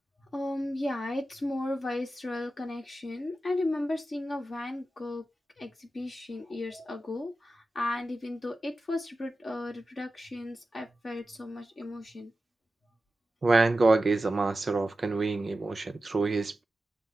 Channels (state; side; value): normal; both; correlation 0.93